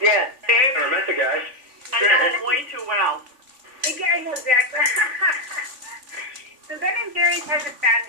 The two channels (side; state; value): left; late; 3.5 ms